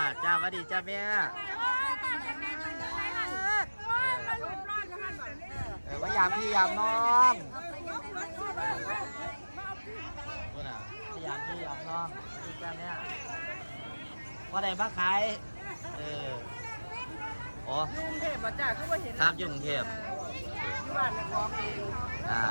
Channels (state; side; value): inverted; both; correlation -1.00